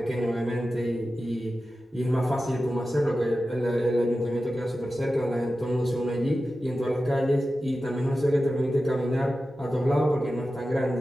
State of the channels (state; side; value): normal; both; correlation 0.93